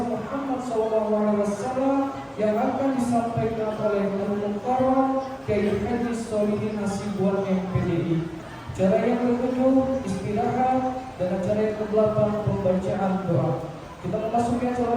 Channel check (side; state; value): both; identical; correlation 1.00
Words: Muhammad SAW yang akan disampaikan oleh Al-Mukarram Kiai Haji Solihin Hasibuan MPDI. Acara yang ketujuh istirahat, dan acara yang ke-8 pembacaan doa. Kita memasuki